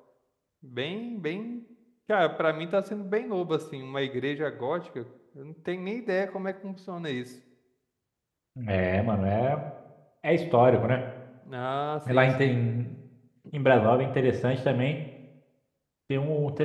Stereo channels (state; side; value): identical; both; correlation 1.00